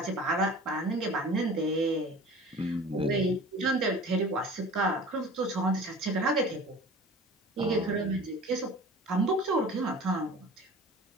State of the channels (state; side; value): normal; both; correlation 0.41